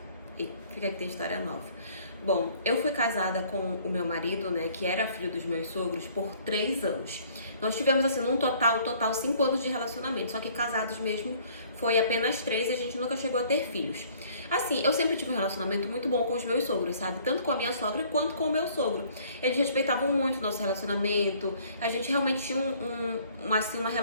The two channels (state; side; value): inverted; both; correlation -0.57